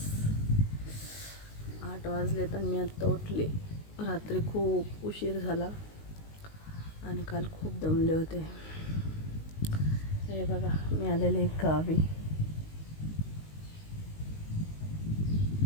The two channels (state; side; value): late; right; 19 ms